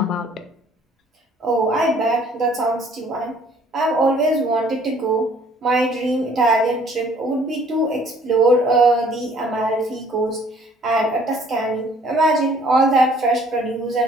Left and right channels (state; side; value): normal; both; correlation 0.58